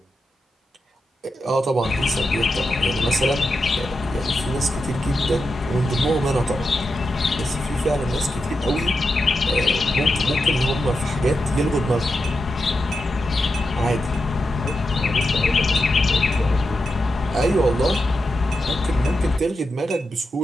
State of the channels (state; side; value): normal; both; correlation 0.88